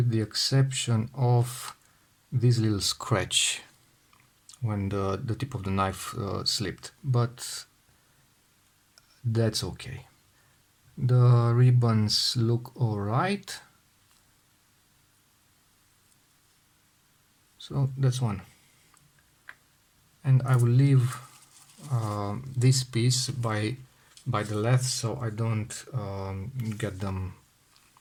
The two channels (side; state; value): both; identical; correlation 1.00